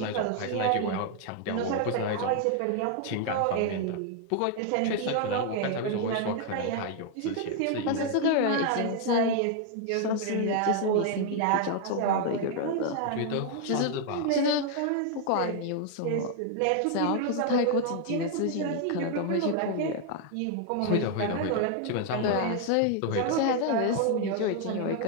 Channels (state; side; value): different; both; correlation 0.00